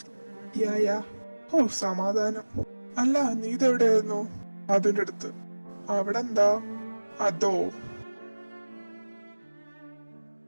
യാ. ഓ സമാധാനം. അല്ല, നീ ഇതെവിടെയായിരുന്നു? അതിന്റെ അടുത്ത്. അവിടെ എന്താ? അതോ.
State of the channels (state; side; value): inverted; both; correlation -1.00